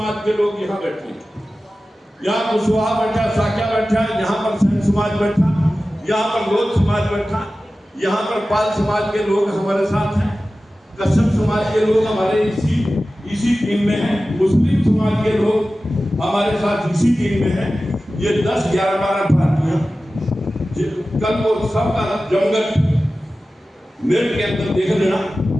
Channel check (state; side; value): normal; both; correlation 0.95